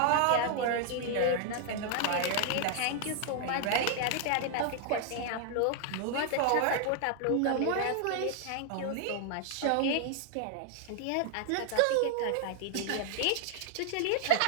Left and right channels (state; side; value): different; both; correlation 0.00